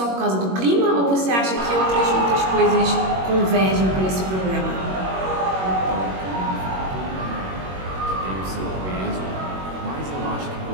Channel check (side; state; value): left; late; 21 ms